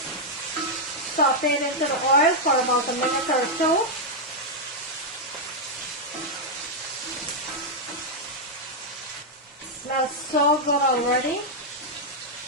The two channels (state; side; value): normal; both; correlation -0.03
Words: saute into the oil for about a minute or so. Smells so good already.